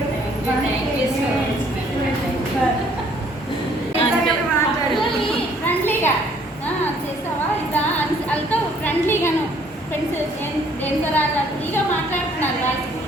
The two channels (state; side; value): normal; both; correlation 0.61